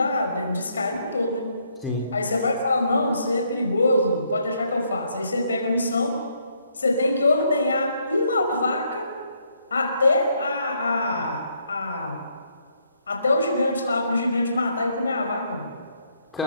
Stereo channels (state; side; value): inverted; both; correlation -0.73